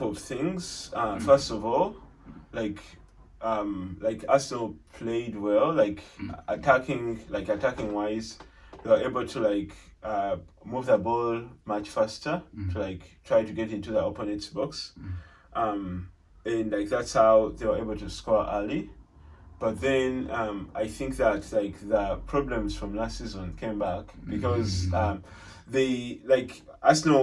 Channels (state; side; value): identical; both; correlation 1.00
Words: of things. First of all, like Arsenal played well. Like attacking wise, they were able to move the ball much faster to try to get into the opponent's box. And that's how they were able to score early. But then I think that the problems from last season came back because Arsenal